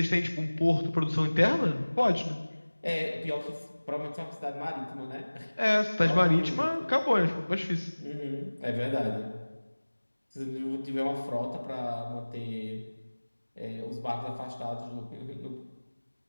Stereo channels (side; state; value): both; inverted; correlation -1.00